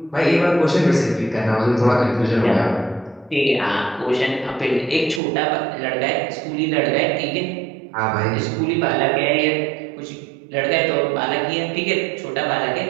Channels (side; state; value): left; drops out; at 5.2 s